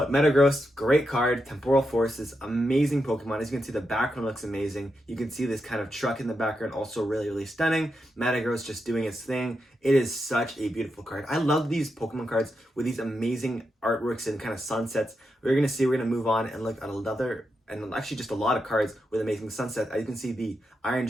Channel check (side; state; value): both; normal; correlation 0.86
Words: Metagross, great card. Temporal Forces, amazing Pokemon. As you can see, the background looks amazing. You can see this kind of truck in the background, also really, really stunning. Metagross just doing its thing. It is such a beautiful card. I love these Pokemon cards with these amazing artworks and kind of sunsets. We're going to move on and look at another, and actually just a lot of cards with amazing sunsets. As you can see, the Iron